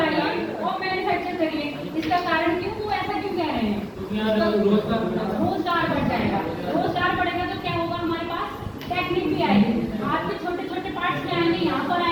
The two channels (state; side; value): identical; both; correlation 1.00